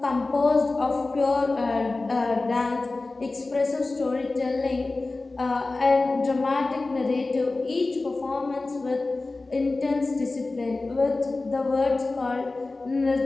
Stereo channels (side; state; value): right; quieter; 3.3 dB